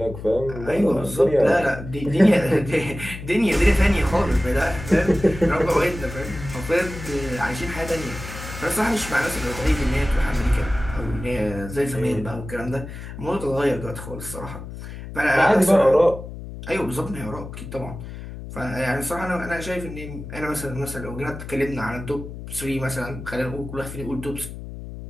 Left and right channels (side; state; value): left; noise; hum, 11 dB below the sound